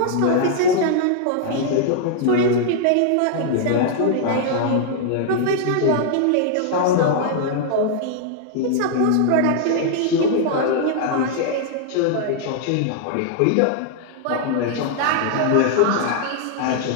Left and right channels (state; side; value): different; both; correlation 0.00